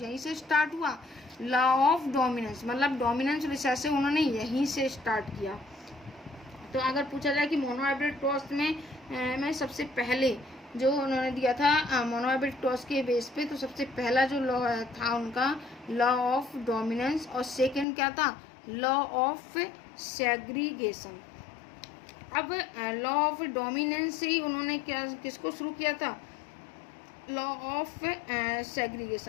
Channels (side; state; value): right; drops out; at 17.9 s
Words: से स्टार्ट हुआ। लॉ ऑफ डोमिनेंस मतलब डोमिनेंस रिसेसिव उन्होंने यहीं से स्टार्ट किया। तो अगर पूछा जाए कि मोनोहाइब्रिड क्रॉस में सबसे पहले जो उन्होंने दिया था मोनोहाइब्रिड क्रॉस के बेस पे, तो सबसे पहला जो लॉ था उनका, लॉ ऑफ डोमिनेंस, और सेकंड क्या था, लॉ ऑफ सेग्रीगेशन। अब लॉ ऑफ डोमिनेंस से ही उन्होंने किसको शुरू किया था, लॉ ऑफ